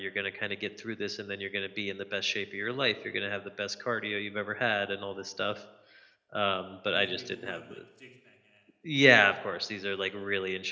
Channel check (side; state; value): both; identical; correlation 1.00